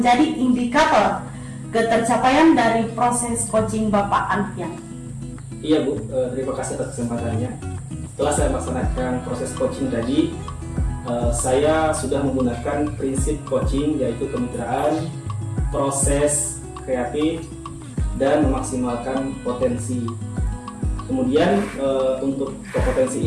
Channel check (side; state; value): both; identical; correlation 1.00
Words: indikator ketercapaian dari proses coaching Bapak Alfian? Iya Bu, terima kasih atas kesempatannya. Setelah saya melaksanakan proses coaching tadi, saya sudah menggunakan prinsip coaching, yaitu kemitraan, proses kreatif, dan memaksimalkan potensi. Kemudian untuk